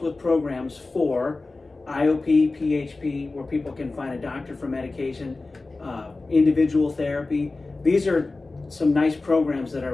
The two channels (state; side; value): quieter; right; 3.4 dB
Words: with programs for IOP, PHP, where people can find a doctor for medication, individual therapy. These are some nice programs that